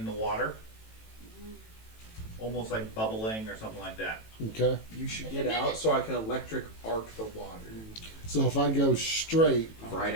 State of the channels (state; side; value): late; right; 18 ms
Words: the water. almost like bubbling or something like that. Okay. You should get out so I can electric arc the water. So if I go straight, Right